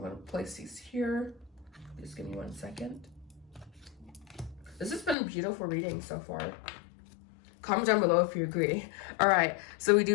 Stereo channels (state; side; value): drops out; right; at 5.2 s